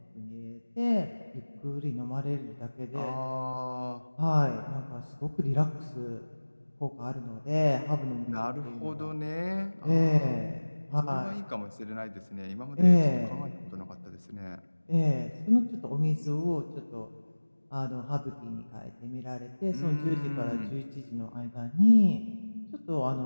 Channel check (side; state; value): both; inverted; correlation -1.00